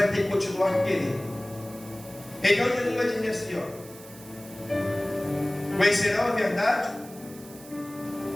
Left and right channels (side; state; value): right; noise; hiss, 20 dB below the sound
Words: ter que continuar querendo. Então Jesus vai dizer assim: conhecerão a verdade,